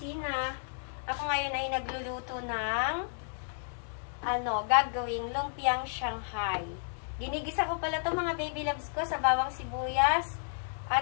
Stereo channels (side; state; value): right; silent; digital silence